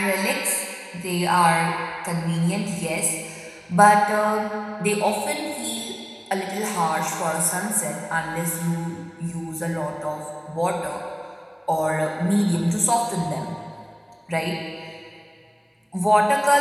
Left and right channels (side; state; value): both; identical; correlation 1.00